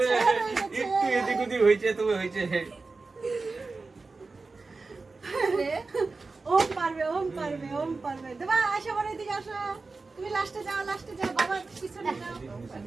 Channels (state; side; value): quieter; left; 3.9 dB